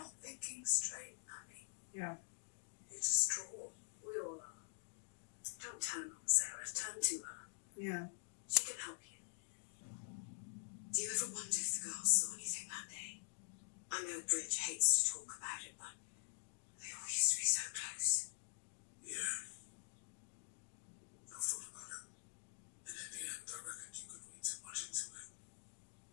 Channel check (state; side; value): silent; right; digital silence